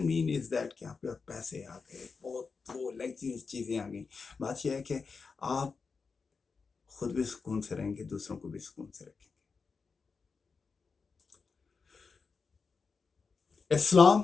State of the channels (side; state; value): right; quieter; 4.9 dB